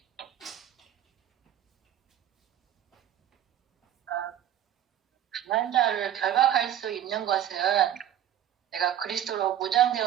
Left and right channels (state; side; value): quieter; left; 11.1 dB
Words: 강한 자를 결박할 수 있는 것은 내가 그리스도로